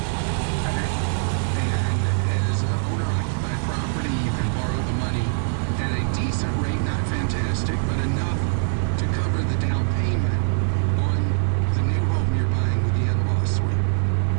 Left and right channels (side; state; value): left; silent; digital silence